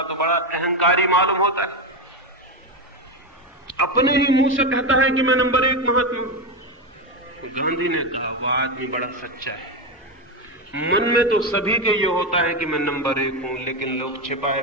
तो बड़ा अहंकारी मालूम होता है, अपने ही मुंह से कहता है कि मैं नंबर 1 महात्मा हूं। तो गांधी ने कहा वह आदमी बड़ा सच्चा है, मन में तो सभी के ये होता है कि मैं नंबर 1 हूं, लेकिन लोग छिपाए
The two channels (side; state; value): both; normal; correlation 0.12